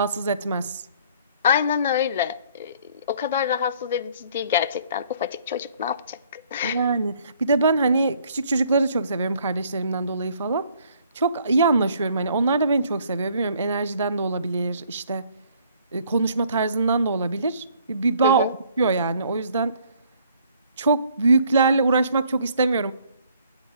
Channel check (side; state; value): both; inverted; correlation -0.61